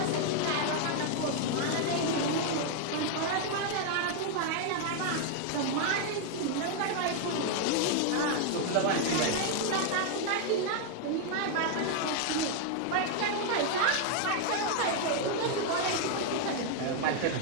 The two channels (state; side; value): different; both; correlation 0.00